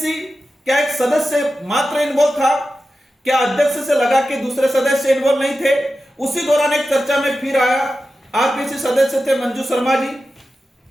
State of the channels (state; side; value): normal; both; correlation 0.92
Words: क्या एक सदस्य मात्र इन्वॉल्व था? क्या अध्यक्ष से लगा कि दूसरे सदस्य इन्वॉल्व नहीं थे? उसी दौरान एक चर्चा में फिर आया, आरपीएससी सदस्य थे मंजू शर्मा जी,